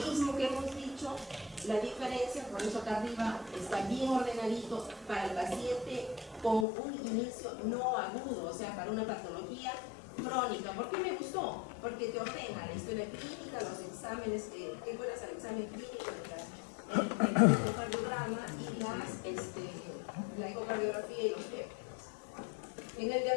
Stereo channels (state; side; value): drops out; right; at 6.7 s